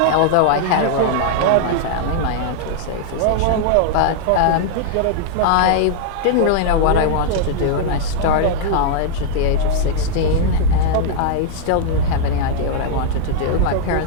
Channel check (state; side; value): different; both; correlation -0.01